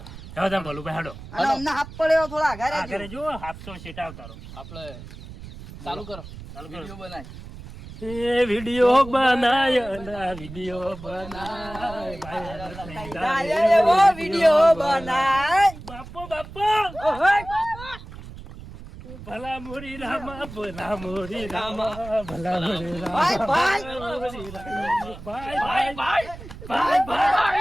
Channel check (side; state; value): right; noise; rumble, 14 dB below the sound